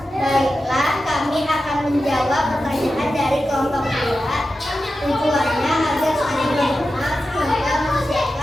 menjawab pertanyaan dari kelompok 2. Tujuannya agar saling mengenal, sehingga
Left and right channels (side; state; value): both; normal; correlation 0.92